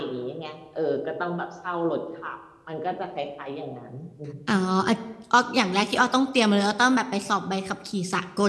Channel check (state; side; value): identical; both; correlation 1.00